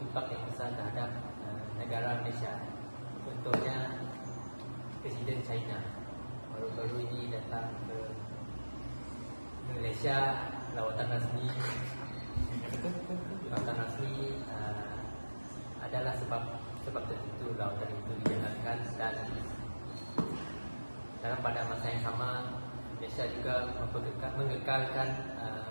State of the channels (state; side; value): inverted; both; correlation -1.00